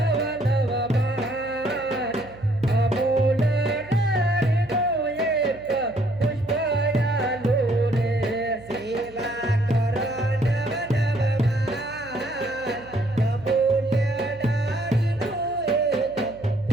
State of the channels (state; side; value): noise; right; hum, 21 dB below the sound